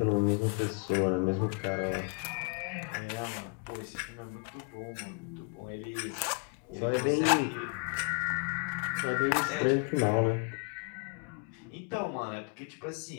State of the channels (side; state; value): right; quieter; 36.5 dB